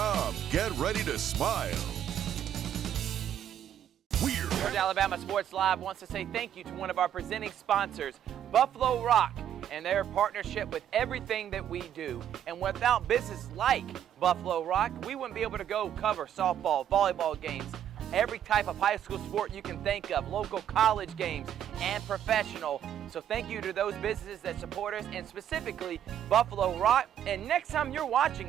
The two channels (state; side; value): quieter; left; 10.1 dB